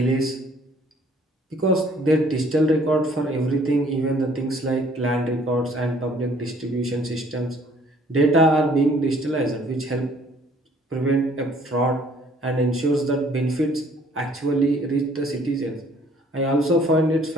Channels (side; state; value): both; normal; correlation 0.59